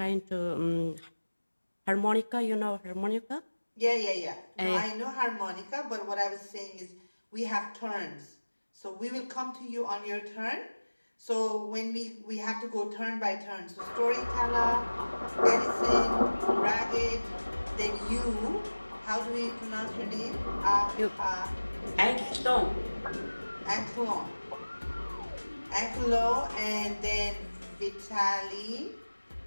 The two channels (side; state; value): both; inverted; correlation -1.00